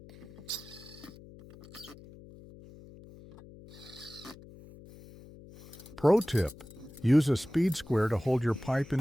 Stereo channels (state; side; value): noise; left; hum, 19 dB below the sound